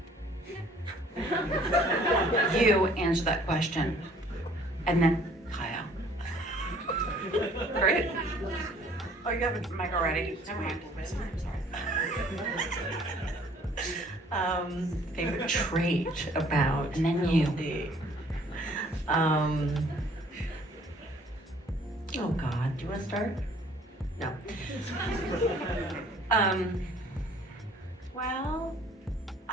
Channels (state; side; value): normal; both; correlation 0.57